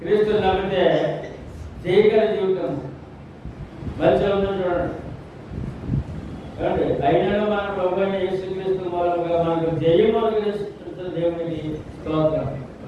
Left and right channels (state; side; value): identical; both; correlation 1.00